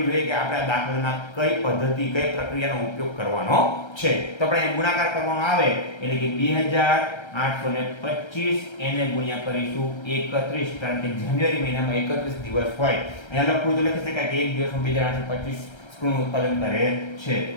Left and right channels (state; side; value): late; right; 1.3 ms